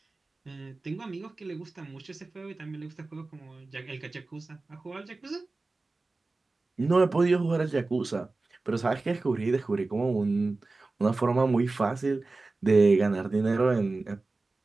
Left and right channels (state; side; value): quieter; left; 3.4 dB